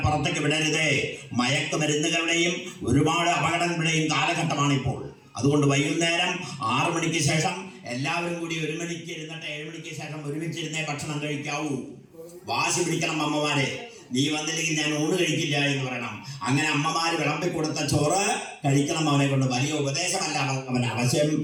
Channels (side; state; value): both; identical; correlation 1.00